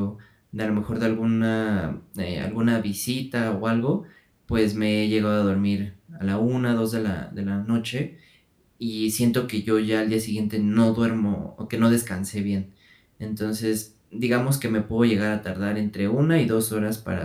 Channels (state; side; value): identical; both; correlation 1.00